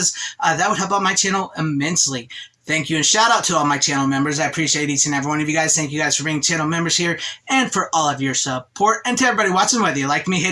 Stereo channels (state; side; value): identical; both; correlation 1.00